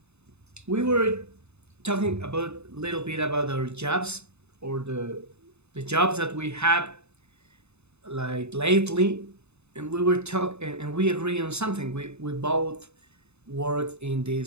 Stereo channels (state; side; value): late; left; 0.81 ms